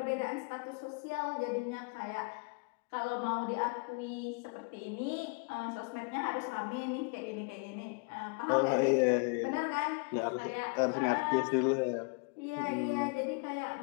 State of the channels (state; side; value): quieter; right; 32.3 dB